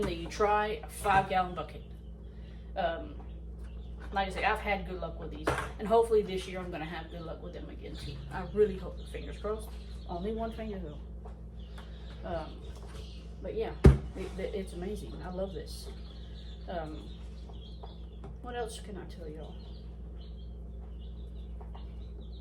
that you try a 5-gallon bucket. like I say, I've had good luck with these. And hopefully this year I'm going to have good luck with them again too. I really hope. Fingers crossed. Only one finger though. But yeah, it's amazing. I love this. What else can I tell y'all?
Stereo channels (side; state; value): both; identical; correlation 1.00